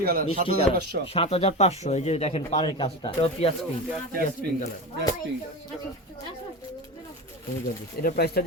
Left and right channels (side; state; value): both; normal; correlation 0.25